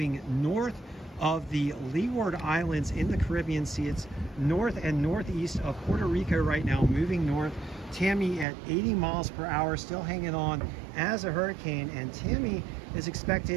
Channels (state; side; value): drops out; left; at 8.5 s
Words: north of the Leeward Islands in the Caribbean Sea. It's north and northeast of Puerto Rico right now, moving north. Tammy at 80 miles per hour, still hanging on as a hurricane, and Tammy is